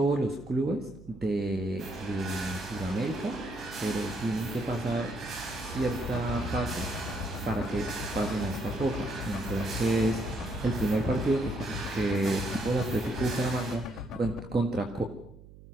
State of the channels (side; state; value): right; noise; hum, 19 dB below the sound